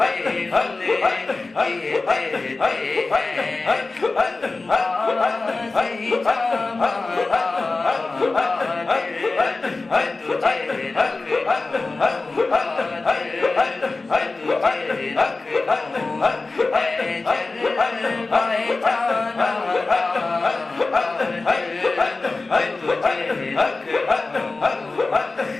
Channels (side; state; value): right; quieter; 3.6 dB